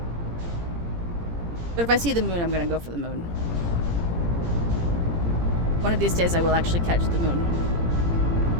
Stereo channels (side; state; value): left; late; 17 ms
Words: But if I see the moon, I'm gonna go for the moon. One of these days I will actually catch the moon.